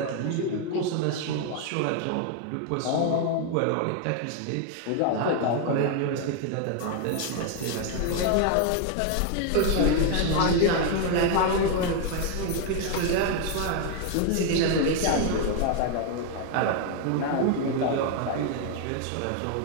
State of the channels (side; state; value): both; different; correlation 0.00